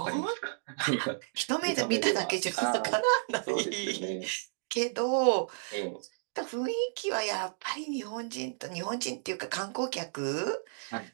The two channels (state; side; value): silent; left; digital silence